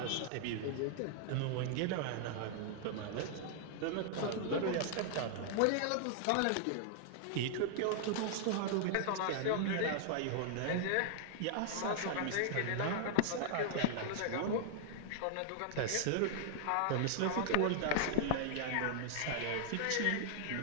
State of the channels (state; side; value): different; both; correlation -0.01